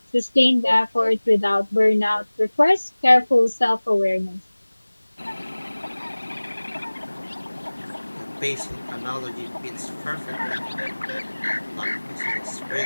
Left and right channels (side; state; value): both; inverted; correlation -1.00